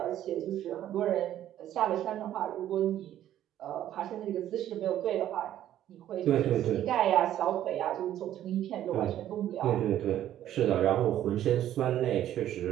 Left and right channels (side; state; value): left; quieter; 11.9 dB